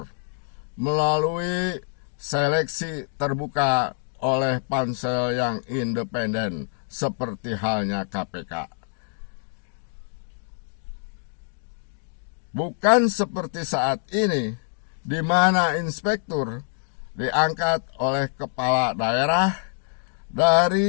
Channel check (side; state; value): right; silent; digital silence